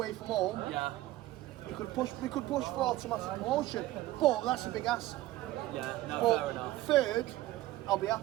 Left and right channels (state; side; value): quieter; left; 16.3 dB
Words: from home, Yeah. we could push for automatic promotion. But that's a big ask. Yeah. No, But fair enough. third, I'll be